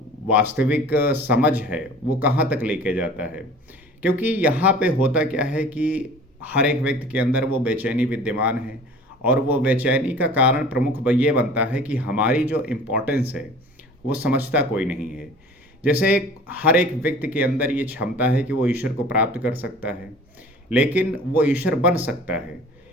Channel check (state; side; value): normal; both; correlation 0.45